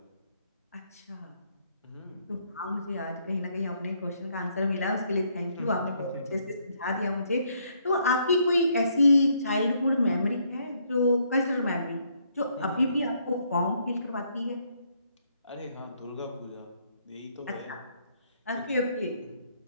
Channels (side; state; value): both; inverted; correlation -0.70